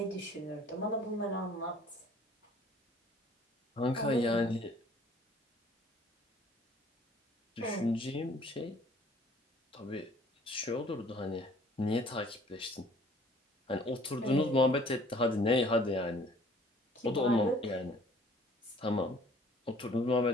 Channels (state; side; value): normal; both; correlation 0.55